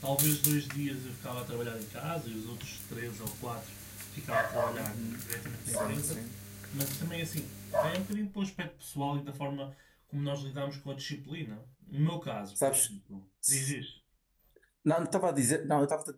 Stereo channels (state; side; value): identical; both; correlation 1.00